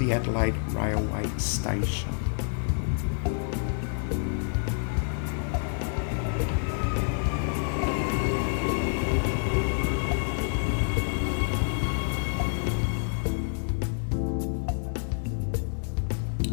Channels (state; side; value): silent; right; 59 dB below the other